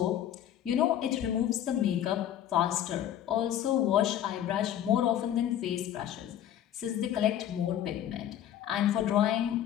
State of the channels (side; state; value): right; quieter; 10.9 dB